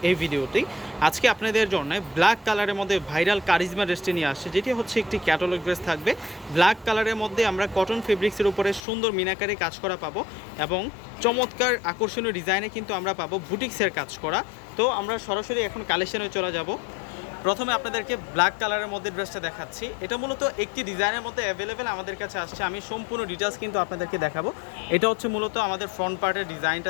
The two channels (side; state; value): right; drops out; at 8.8 s